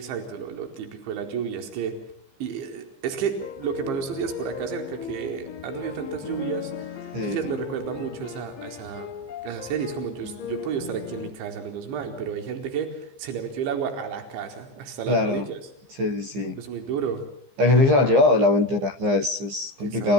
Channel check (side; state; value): left; late; 15 ms